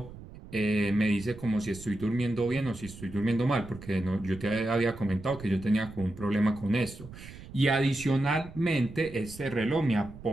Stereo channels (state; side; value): noise; right; rumble, 16 dB below the sound